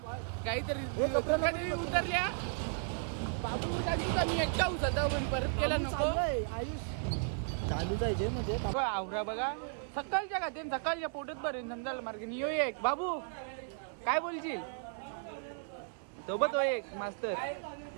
काहीतरी दुर्गादेवी उतरल्या. बाबू सांगितलं मी एकटा उचलता पण परत केला नको. आयुष चालू जायचे म्हणजे आवरा बघा सकाळच्या का ते सकाळच्या पोटात बरे नंदाला मार्ग नियो एक. बाबू काय बोलशील सोबत हो एक मास्तर.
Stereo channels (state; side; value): silent; left; 54 dB below the other